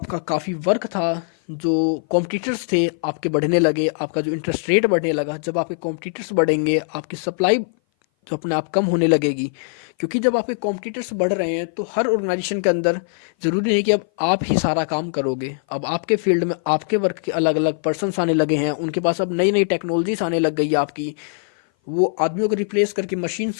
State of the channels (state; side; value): silent; right; 58 dB below the other